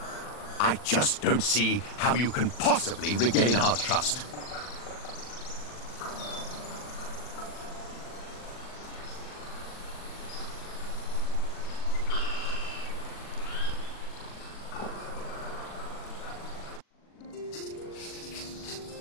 I just don't see how you can possibly regain our trust.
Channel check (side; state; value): right; late; 40 ms